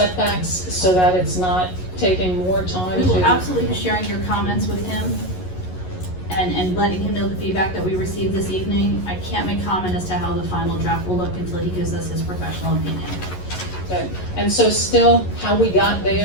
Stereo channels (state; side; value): late; right; 11 ms